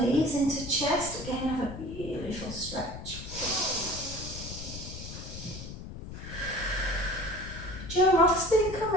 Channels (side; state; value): left; noise; rumble, 10 dB below the sound